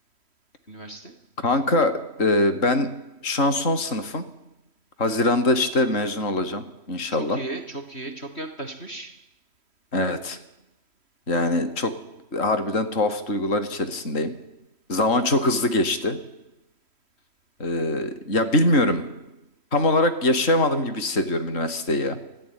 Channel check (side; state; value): right; late; 3.1 ms